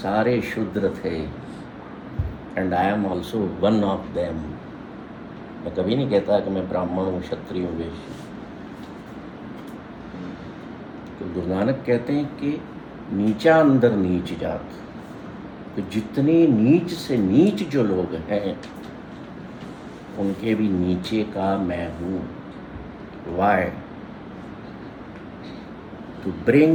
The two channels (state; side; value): identical; both; correlation 1.00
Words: शूद्र थे, and I am also one of them. मैं कभी नहीं कहता कि मैं ब्राह्मण हूँ, क्षत्रिय हूँ, वैश्य हूँ। तो गुरु नानक कहते हैं कि नीचा अंदर नीच जात, तो जितने नीच से नीच जो लोग हैं उनके भी नीचे का मैं हूँ। Why? To